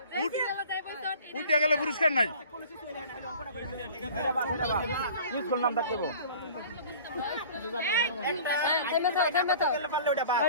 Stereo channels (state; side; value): inverted; both; correlation -0.45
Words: উঠে গেলে পুরস্কার নাই। নাম থাকতে